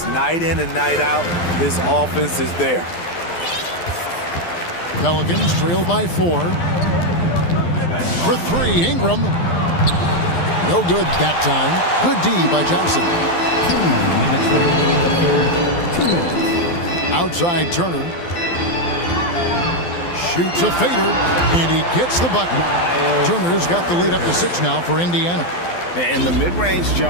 Night in and night out, his offense is there. Pelicans trail by 4. For 3, Ingram. No good that time. Good D by Johnson. 2 minutes remaining in the third. 2 minutes. Outside Turner. Shoots a fader, and he gets the bucket. Turner's got the lead up to 6 now for Indiana. And the mid-range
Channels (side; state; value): right; late; 12 ms